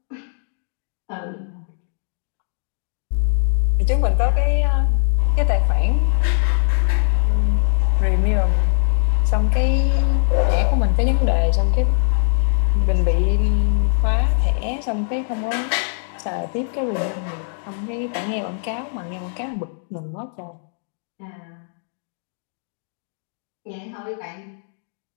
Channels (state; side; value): silent; right; digital silence